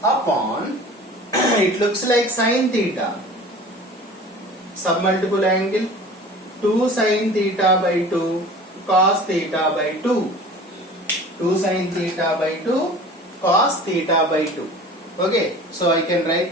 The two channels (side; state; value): both; normal; correlation 0.42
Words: upon it looks like sin theta, submultiple angle 2 sin theta by 2 cos theta by 2, 2 sin theta by 2 cos theta by 2. Okay, so I can